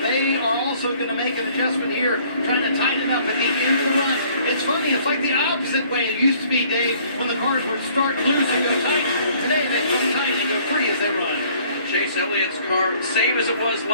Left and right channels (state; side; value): inverted; both; correlation -0.58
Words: are also going to make an adjustment here, trying to tighten up at the end of the run. It's funny, it's like the opposite way it used to be, Dave, when the cars would start loose and go tight. Today they go tight and go free as they run. Chase Elliott's car, same as it was